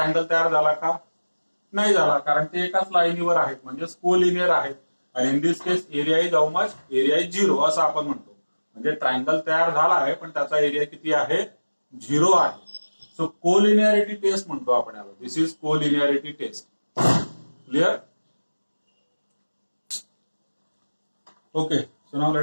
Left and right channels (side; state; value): both; inverted; correlation -1.00